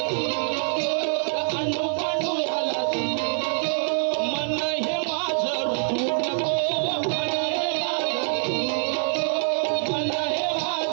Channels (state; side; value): silent; left; 61 dB below the other